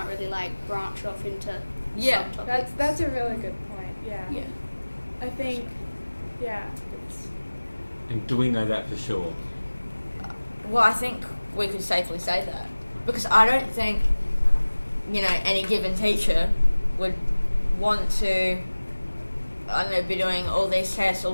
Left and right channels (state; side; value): inverted; both; correlation -1.00